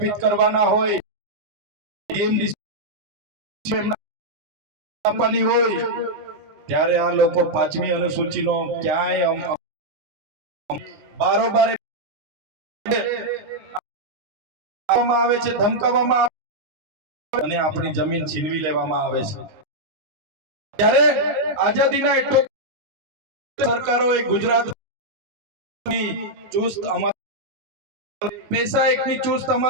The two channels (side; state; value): left; late; 20 ms